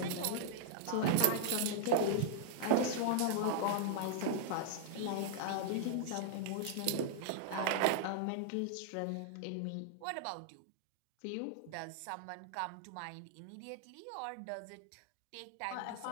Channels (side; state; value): both; different; correlation -0.01